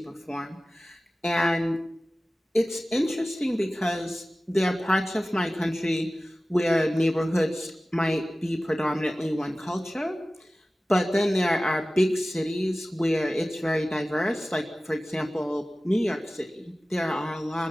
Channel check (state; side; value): normal; both; correlation 0.97